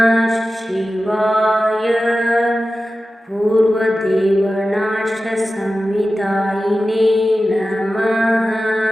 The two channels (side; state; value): both; normal; correlation 0.94